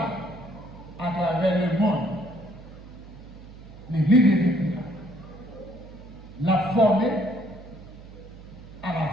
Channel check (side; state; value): right; noise; hum, 17 dB below the sound